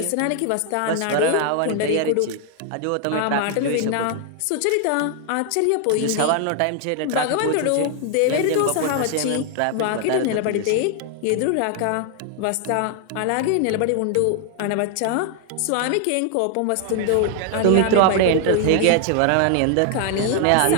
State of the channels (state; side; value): different; both; correlation 0.00